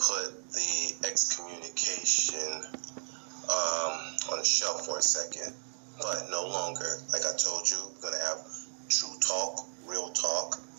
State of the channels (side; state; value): left; silent; 56 dB below the other